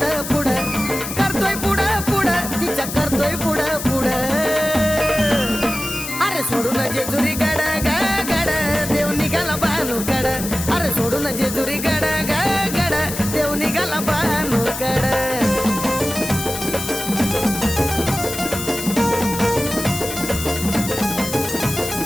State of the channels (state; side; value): noise; left; hiss, 7 dB below the sound